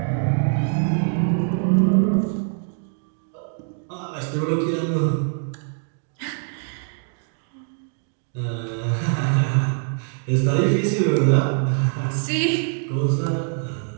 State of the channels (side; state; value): left; silent; 56 dB below the other